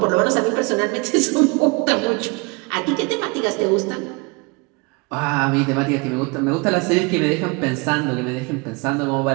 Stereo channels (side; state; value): left; quieter; 28.5 dB